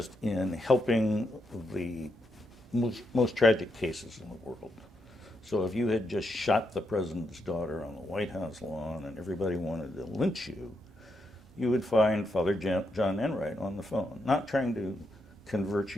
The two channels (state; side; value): normal; both; correlation 0.81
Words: in helping the most tragic cases in the world. So if you had just shot the president's daughter on the White House lawn and everybody wanted to lynch you, you would find Father John Enright on the phone, not trying to convert